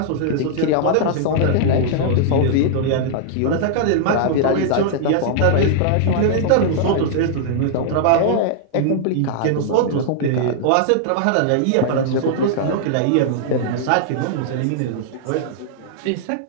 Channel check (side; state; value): both; different; correlation -0.01